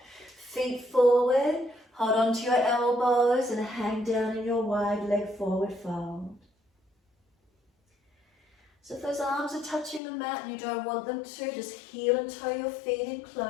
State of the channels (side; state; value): right; drops out; at 10.0 s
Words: Feet forward, hold on to your elbows and hang down in your wide leg forward fold. So if those arms are touching the mat and you don't want them to, just heel and toe your feet in